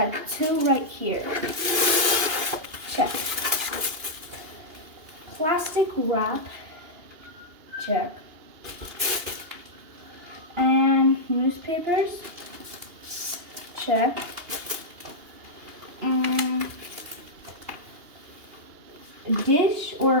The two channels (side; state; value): left; late; 2.8 ms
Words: 2 right here. Check. Plastic wrap. Check. And newspapers. Check. And dish